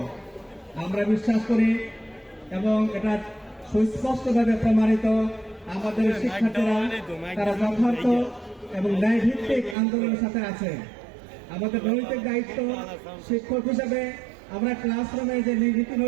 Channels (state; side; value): drops out; left; at 9.8 s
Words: আমরা বিশ্বাস করি এবং এটা সুস্পষ্টভাবে প্রমাণিত, আমাদের শিক্ষার্থীরা তারা যথার্থ এবং ন্যায়ভিত্তিক আন্দোলনের সাথে আছে। আমাদের নৈতিক দায়িত্ব শিক্ষক হিসেবে আমরা ক্লাসরুমে যে নীতি